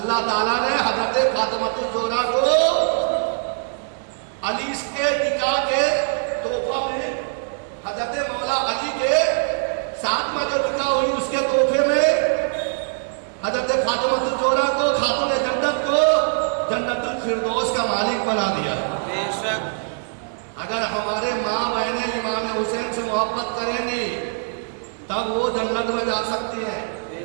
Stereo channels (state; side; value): silent; left; digital silence